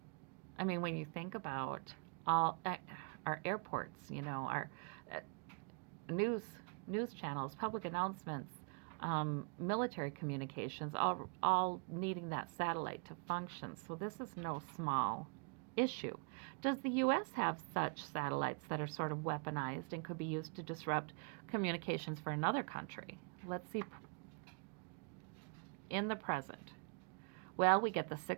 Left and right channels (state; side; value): quieter; left; 38.3 dB